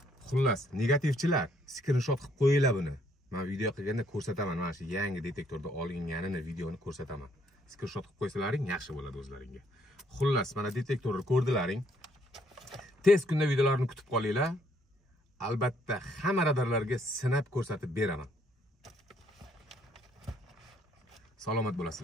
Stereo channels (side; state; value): both; normal; correlation 0.68